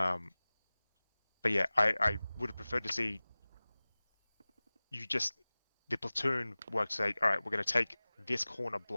yeah, I would have preferred to see the platoon work to say, all right, we're going to take this corner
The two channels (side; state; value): both; inverted; correlation -0.99